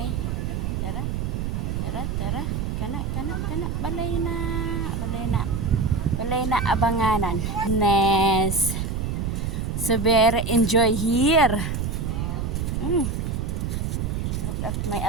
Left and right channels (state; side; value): noise; right; rumble, 2 dB below the sound